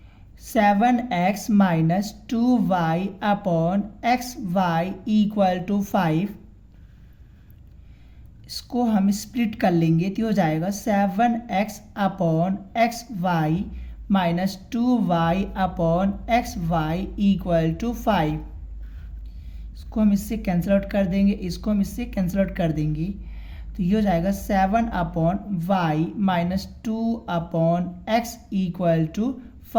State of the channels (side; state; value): both; identical; correlation 1.00